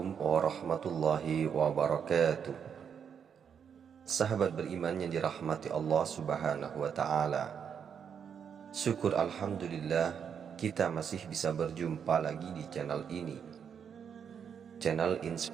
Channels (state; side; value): quieter; left; 7.5 dB